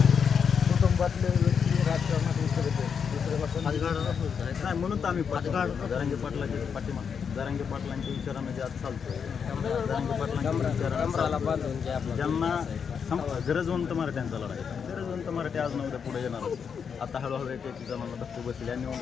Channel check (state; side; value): quieter; right; 6.7 dB